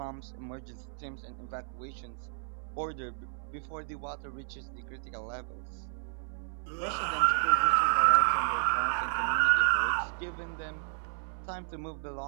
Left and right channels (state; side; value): silent; left; 57 dB below the other